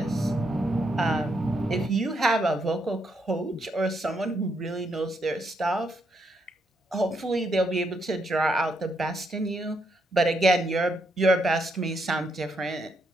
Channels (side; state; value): both; normal; correlation 0.77